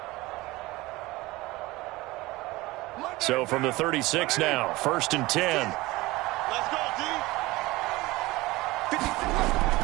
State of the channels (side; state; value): left; quieter; 20.4 dB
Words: So from the 36 now, 1st and 10. Let's go, D.